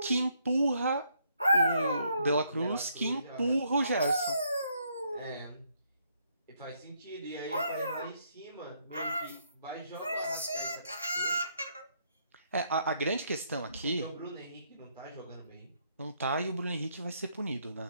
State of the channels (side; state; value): both; inverted; correlation -0.72